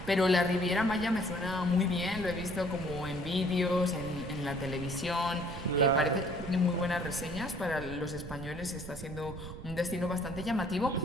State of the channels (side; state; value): right; noise; rumble, 11 dB below the sound